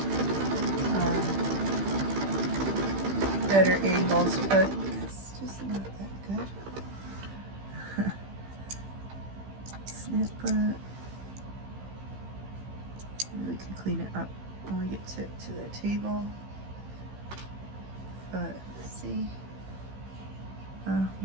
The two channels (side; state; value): left; late; 15 ms